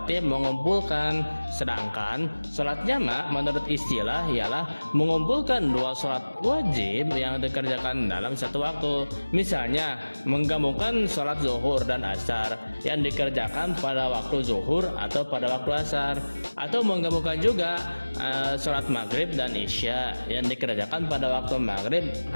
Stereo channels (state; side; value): inverted; both; correlation -1.00